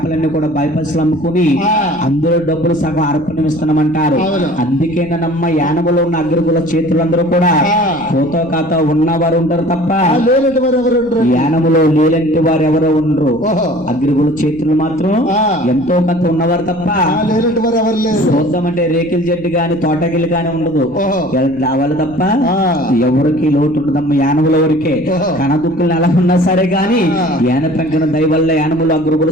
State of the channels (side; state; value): left; noise; rumble, 24 dB below the sound